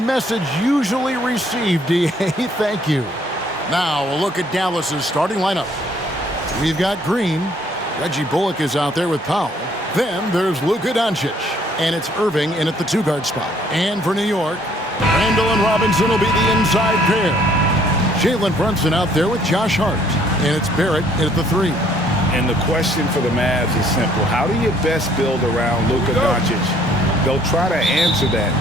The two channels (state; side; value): normal; both; correlation 0.63